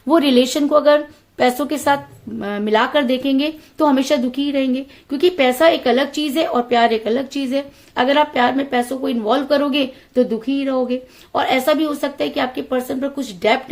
वो रिलेशन को अगर पैसों के साथ मिलाकर देखेंगे तो हमेशा दुखी ही रहेंगे, क्योंकि पैसा एक अलग चीज है और प्यार एक अलग चीज है। अगर आप प्यार में पैसों को इन्वॉल्व करोगे तो दुखी ही रहोगे। और ऐसा भी हो सकता है कि आपके पर्सन पर कुछ डेप्ट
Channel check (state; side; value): identical; both; correlation 1.00